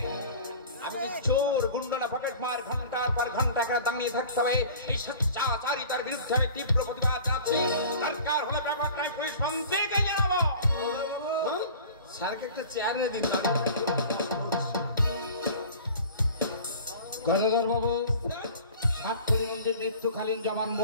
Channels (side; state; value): both; inverted; correlation -0.43